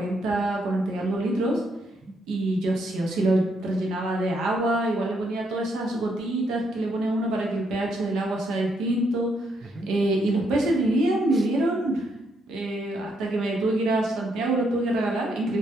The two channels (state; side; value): normal; both; correlation 0.75